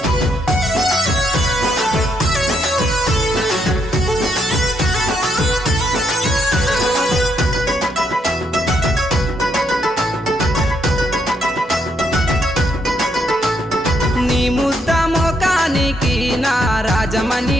నీ ముద్ద మోకానికి నా రాజమణి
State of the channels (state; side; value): normal; both; correlation 0.76